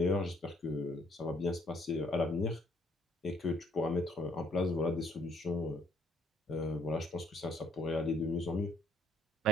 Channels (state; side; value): normal; both; correlation 0.65